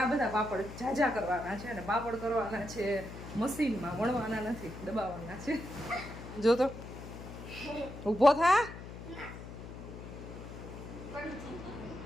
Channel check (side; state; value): left; noise; hum, 12 dB below the sound